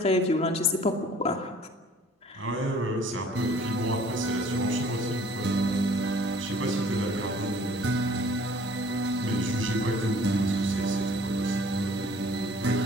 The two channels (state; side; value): normal; both; correlation 0.53